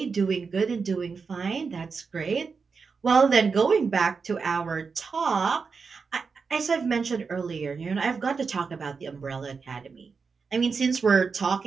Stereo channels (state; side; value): quieter; left; 5.1 dB